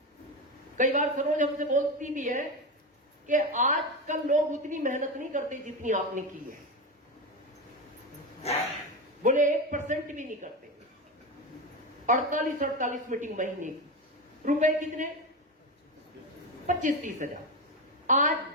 कई बार सरोज हमसे बोलती भी है कि आजकल लोग उतनी मेहनत नहीं करते जितनी आपने की है। बोले 1% भी नहीं करते। 48 मीटिंग महीने की, रुपए कितने? 25-30 हजार। आज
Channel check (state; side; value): normal; both; correlation 0.18